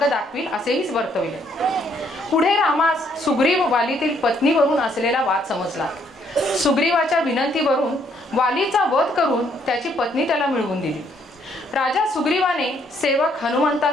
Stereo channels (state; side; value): normal; both; correlation 0.69